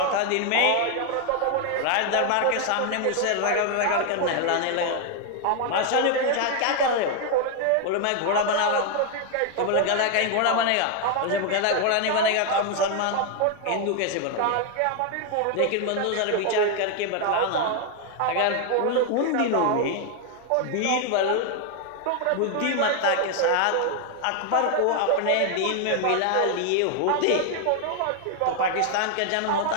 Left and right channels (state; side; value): different; both; correlation 0.00